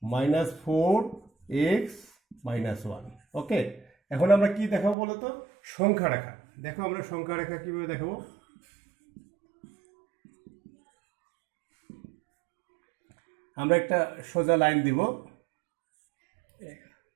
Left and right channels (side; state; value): left; drops out; at 5.0 s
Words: -4x - 1। ওকে, এখন আমরা কি দেখাবো বলতো, সংখ্যা রেখা। দেখো আমরা সংখ্যা রেখা কিভাবে দেখাবো। আমরা একটা সোজা লাইন দিব,